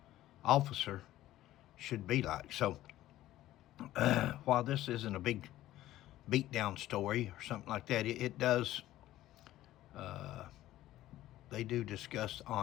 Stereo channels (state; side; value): quieter; right; 14.5 dB